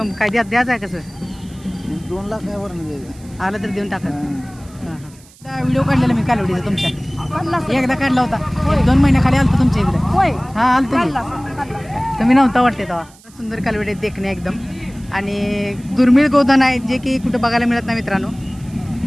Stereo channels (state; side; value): noise; right; hiss, 25 dB below the sound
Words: काय द्यायचं आहे कसं? 2 लाख आहे वरून द्यायचं. आलं तर देऊन टाका. व्हिडिओ काढलेला मी कालवडीचा तुमच्या एकदा काढला होता, 2 महिन्याखाली आलतो तुमच्या इकडे. हा आलतो तुम्ही नव्हता वाटते तेव्हा. सुंदर कालवडी देखणे एकदम आणि दुर्मिळ गोधन आहे जे की कुठं बघायला मिळत नाही मित्रांनो.